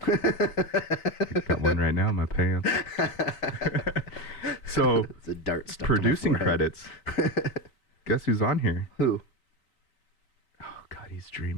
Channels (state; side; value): late; right; 4.4 ms